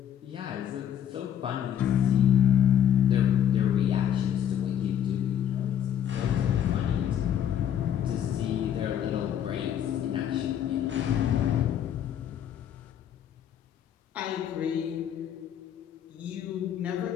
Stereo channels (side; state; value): right; quieter; 9.8 dB